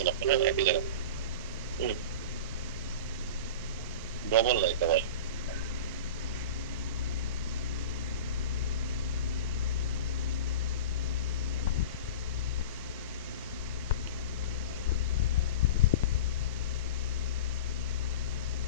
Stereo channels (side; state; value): both; inverted; correlation -0.31